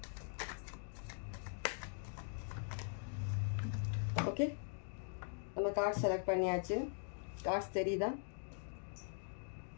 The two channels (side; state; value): right; silent; digital silence